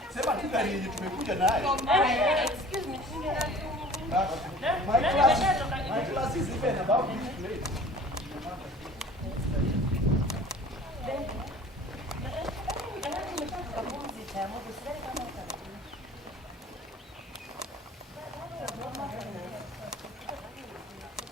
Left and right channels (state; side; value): normal; both; correlation 0.46